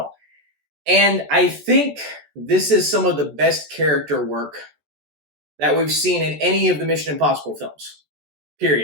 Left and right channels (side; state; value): left; late; 14 ms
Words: And I think this is some of the best character work that we've seen in any of the Mission Impossible films.